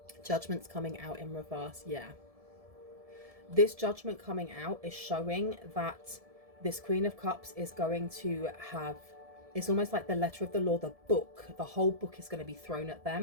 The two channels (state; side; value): late; left; 1.7 ms